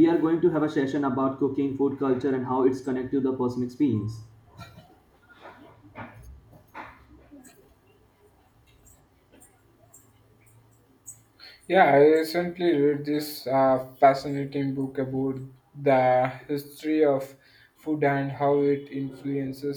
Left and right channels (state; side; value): identical; both; correlation 1.00